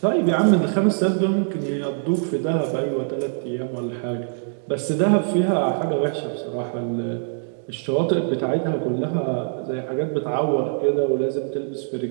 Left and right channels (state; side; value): silent; left; digital silence